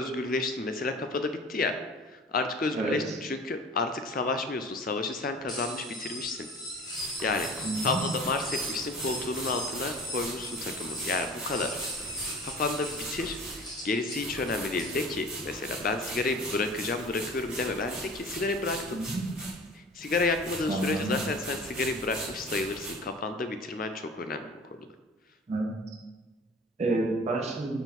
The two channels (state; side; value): normal; both; correlation 0.41